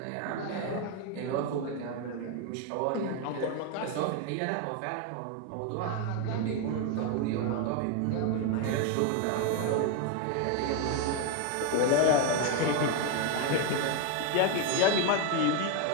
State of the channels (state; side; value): different; both; correlation 0.01